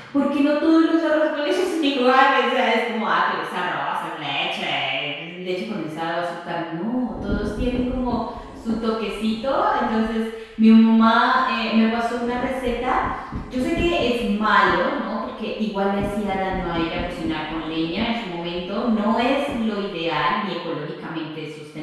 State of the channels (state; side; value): identical; both; correlation 1.00